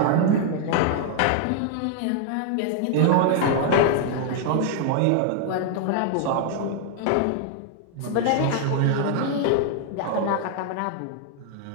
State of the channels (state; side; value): different; both; correlation 0.00